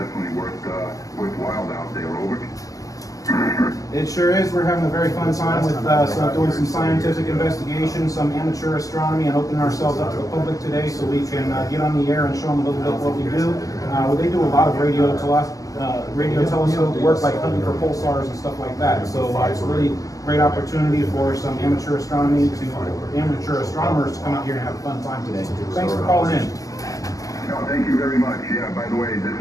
worthwhile out there, over. It sure is. We're having a very fun time with doing some scientific investigation, some amateur astronomy, and opening ourselves up to the public today so we can get on the air and show them a little bit what we do. They do a lot of radio telescope work, like hunting for pulsars and stuff like that. So it's a really great opportunity for some amateur astronomers to come out here and have a fun time today. Thanks for calling in. No, thank you very much. Yeah, by the way, this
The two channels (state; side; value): late; right; 0.17 ms